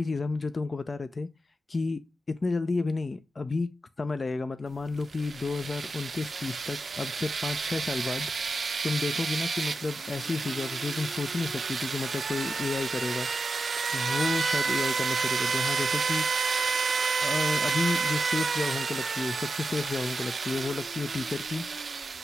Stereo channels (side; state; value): both; normal; correlation 0.88